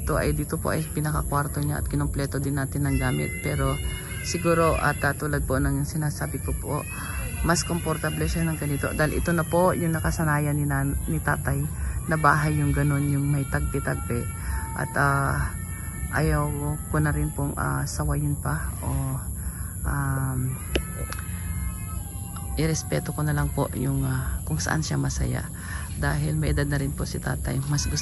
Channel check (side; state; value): both; identical; correlation 1.00